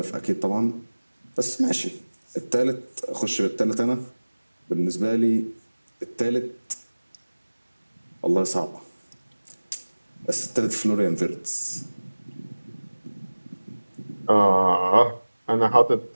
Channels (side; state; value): both; inverted; correlation -1.00